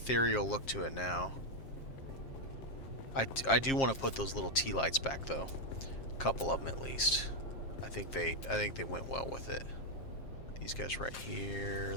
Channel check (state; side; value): late; right; 7.5 ms